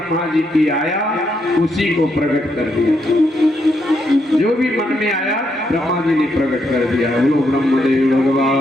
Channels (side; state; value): both; normal; correlation 0.78